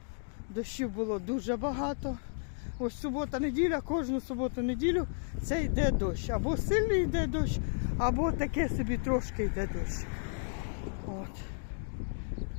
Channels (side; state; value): right; silent; digital silence